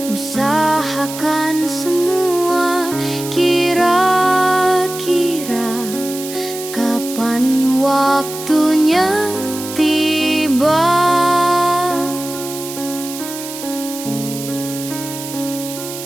usahakan semua. Kira-kira kapan waktunya tiba?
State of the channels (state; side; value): noise; right; hiss, 10 dB below the sound